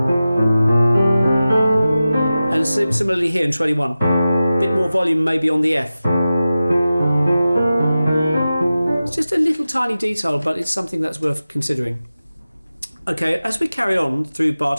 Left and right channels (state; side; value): inverted; both; correlation -0.95